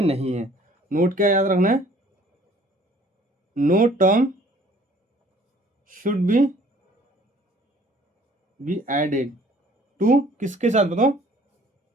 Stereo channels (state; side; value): normal; both; correlation 0.55